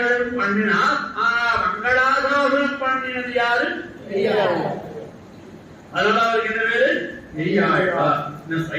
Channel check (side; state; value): both; identical; correlation 1.00